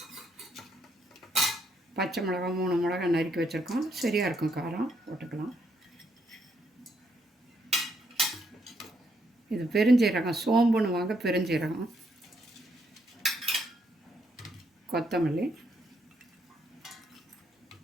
பச்சை மிளகா 3 மிளகா நறுக்கி வச்சுருக்கோம், சரியாக இருக்கும் காரம், போட்டுக்கலாம். இது பெருஞ்சீரகம், சோம்புன்னு வாங்க, பெருஞ்சீரகம், கொத்தமல்லி,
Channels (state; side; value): normal; both; correlation 0.74